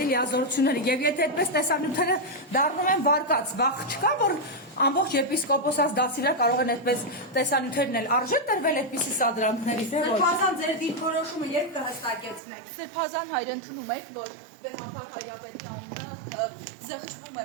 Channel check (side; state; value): left; drops out; at 12.4 s